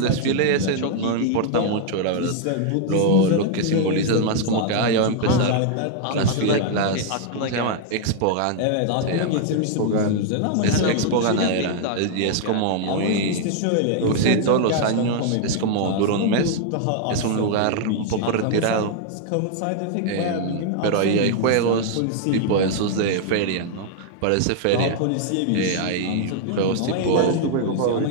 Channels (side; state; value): both; different; correlation 0.00